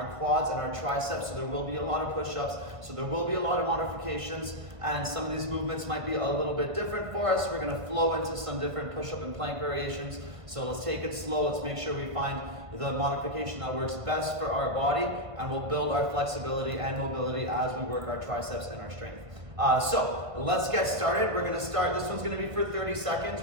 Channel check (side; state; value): left; late; 1.5 ms